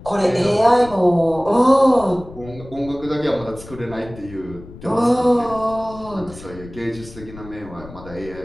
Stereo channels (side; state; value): left; noise; rumble, 17 dB below the sound